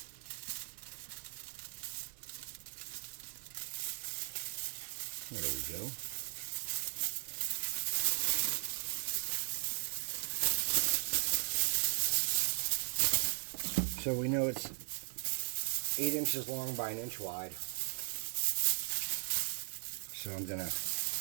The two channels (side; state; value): left; silent; 52 dB below the other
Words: There we go. So we know it's 8 inches long by 1 inch wide. So I'm gonna